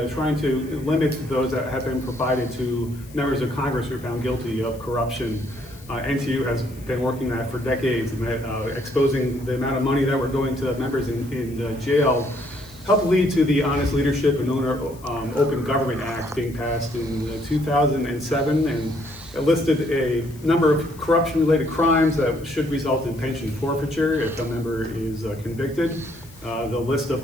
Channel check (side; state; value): left; noise; hiss, 23 dB below the sound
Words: trying to limit those that have been provided to members of Congress who are found guilty of corruption. NTU has been working that for decades, and exposing the amount of money that were going to members in jail helped lead to the Honest Leadership and Open Government Act being passed in 2007, and it listed a number of corruption-related crimes that should result in pension forfeiture if a member is convicted. The list of